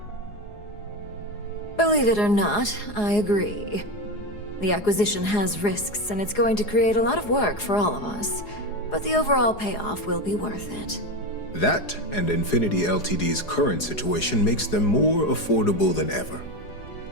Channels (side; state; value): right; late; 4.8 ms